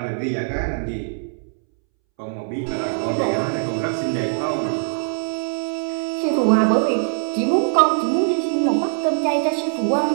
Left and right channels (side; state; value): left; silent; 64 dB below the other